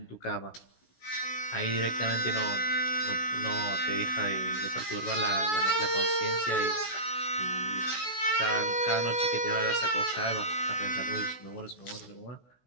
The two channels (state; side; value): late; right; 16 ms